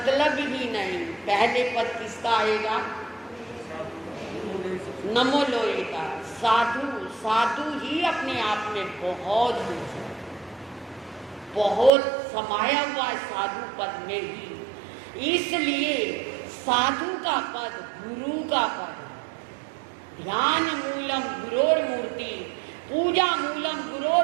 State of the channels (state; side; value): drops out; left; at 11.9 s